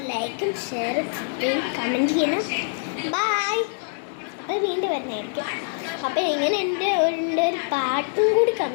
ലൈക്കും ഷെയറും സബ്സ്ക്രൈബ് കമൻറ്റ് ചെയ്യണം. ബൈ. അപ്പോൾ വീണ്ടും വരുന്നതായിരിക്കും. അപ്പോൾ ഇങ്ങനെ എൻ്റെ ഒരു പാട്ടും കൂടി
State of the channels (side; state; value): right; silent; digital silence